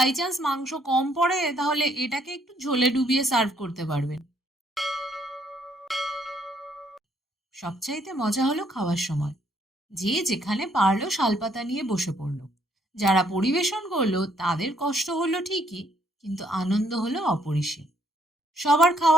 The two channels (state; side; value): normal; both; correlation 0.69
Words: চান্স মাংস কম পড়ে তাহলে এটাকে একটু ঝোলে ডুবিয়ে সার্ভ করতে পারবেন। সবচাইতে মজা হলো খাওয়ার সময়। যে যেখানে পারলো শালপাতা নিয়ে বসে পড়লো। যারা পরিবেশন করলো তাদের কষ্ট হলো ঠিকই, কিন্তু আনন্দ হলো অপরিসীম। সবার